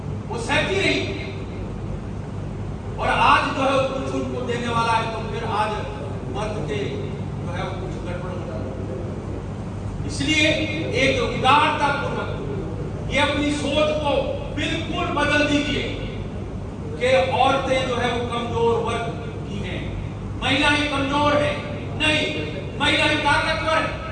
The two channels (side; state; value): both; identical; correlation 1.00